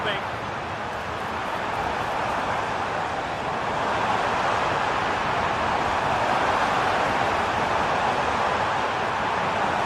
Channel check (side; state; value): both; identical; correlation 1.00